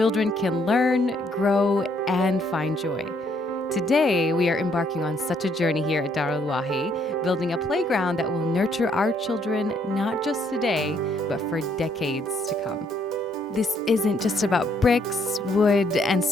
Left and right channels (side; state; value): both; normal; correlation 0.69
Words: can learn, grow, and find joy. Today, we are embarking on such a journey here at Darul Wahi, building a playground that will nurture our children not just today, but for decades to come. This isn't just about bricks, wood, and